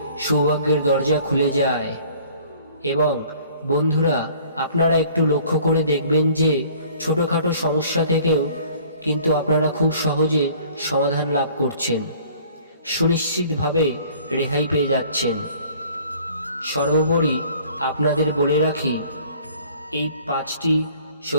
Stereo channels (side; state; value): both; inverted; correlation -0.53